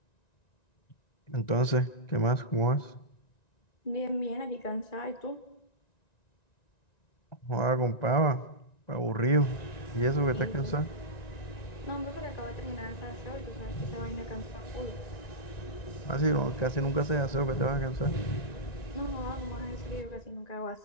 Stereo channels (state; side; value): late; right; 1.9 ms